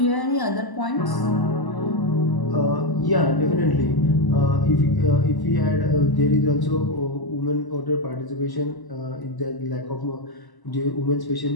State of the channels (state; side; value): late; right; 1.0 ms